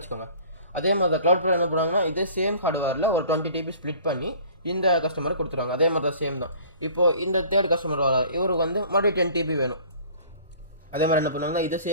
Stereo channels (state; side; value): inverted; both; correlation -0.49